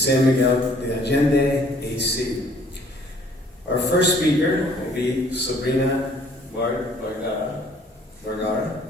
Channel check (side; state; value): both; normal; correlation 0.59